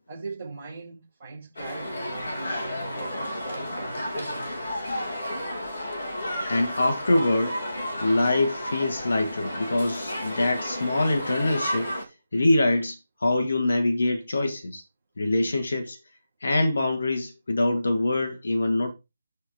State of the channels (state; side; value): inverted; both; correlation -0.92